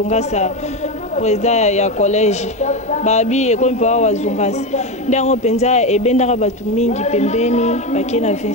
président ya collège babi et comme Papa Wazungasa ndango penza e bendaka batu mingi pembeni bakena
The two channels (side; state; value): both; normal; correlation 0.16